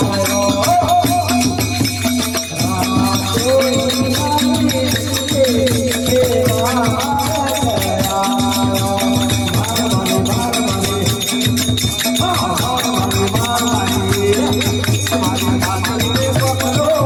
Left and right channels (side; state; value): both; identical; correlation 1.00